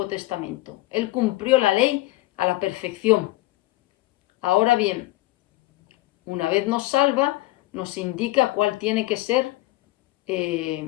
Testamento. Él cumplió la ley a la perfección. Ahora bien, una vez nos salva, nos indica cuál tiene que ser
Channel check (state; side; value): quieter; right; 18.7 dB